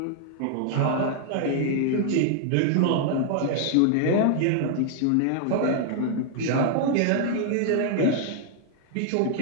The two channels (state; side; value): different; both; correlation 0.00